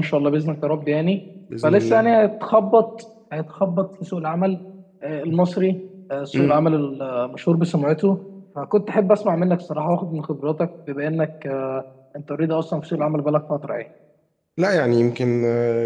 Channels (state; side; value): identical; both; correlation 1.00